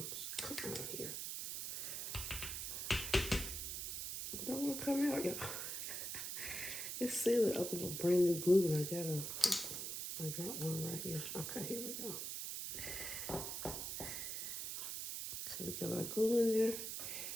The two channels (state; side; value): noise; right; hiss, 4 dB below the sound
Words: Come out here. Don't want to come out, y'all. It's sealed up with a brand new glue, and I got one right here. Okay, here we go. So we got our glue in there.